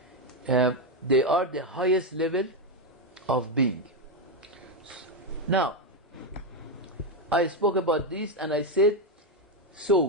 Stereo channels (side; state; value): both; normal; correlation 0.06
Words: they are the highest level of being. Now, I spoke about this and I said, so